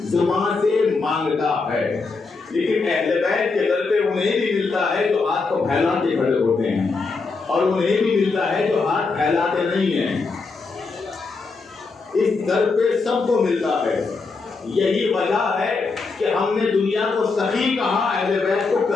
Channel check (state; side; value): quieter; right; 4.2 dB